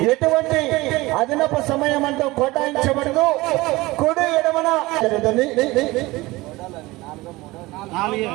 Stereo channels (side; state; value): left; quieter; 20.6 dB